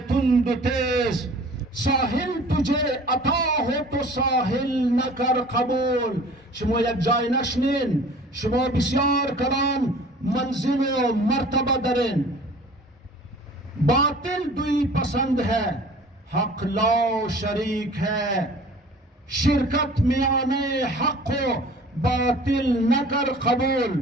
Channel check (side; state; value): both; normal; correlation 0.46